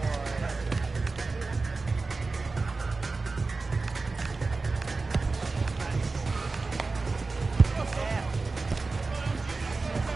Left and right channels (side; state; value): left; quieter; 3.8 dB